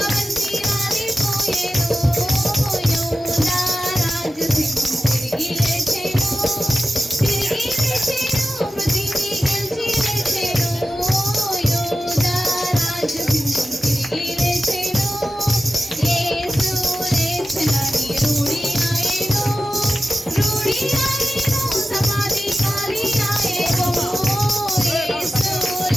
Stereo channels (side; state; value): both; normal; correlation 0.94